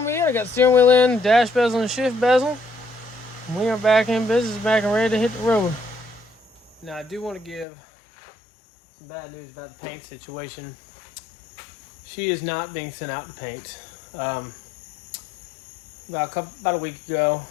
be it. I got steering wheel in, dash bezel, and shift bezel. And we are back in business, back and ready to hit the road. Now I do want to give some bad news about the paint situation. She is not being sent out to paint. About a week ago,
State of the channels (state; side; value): drops out; right; at 7.7 s